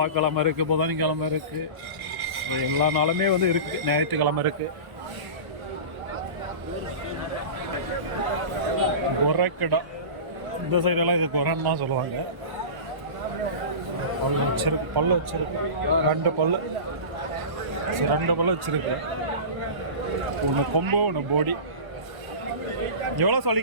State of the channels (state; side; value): late; left; 1.1 ms